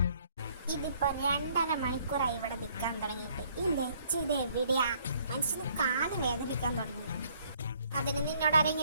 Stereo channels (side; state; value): both; inverted; correlation -0.64